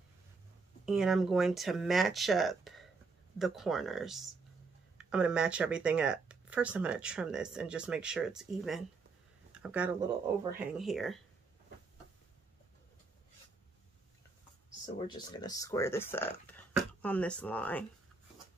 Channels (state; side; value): quieter; left; 4.2 dB